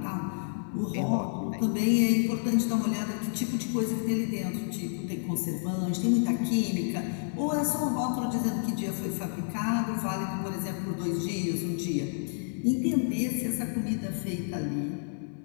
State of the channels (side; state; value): right; silent; 58 dB below the other